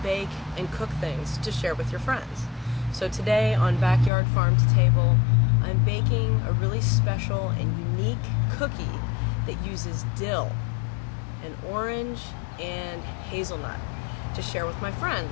bake and cook things to share with your friends. So today on Backyard Farm to Table, I'm baking a really special and unique cookie that uses dill and orange and hazelnut to share with my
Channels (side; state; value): right; drops out; at 4.1 s